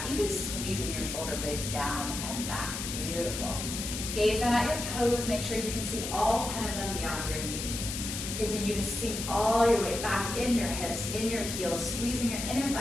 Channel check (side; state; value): left; noise; hiss, 5 dB below the sound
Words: even squeezing your shoulder blades down and back. Beautiful. Gaze down at your toes, make sure you can see all 10 of them beyond your knees. Continue to sink all your weight back in your hips, in your heels, squeezing your inner